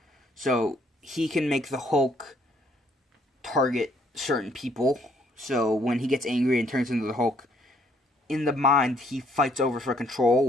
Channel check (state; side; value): normal; both; correlation 0.66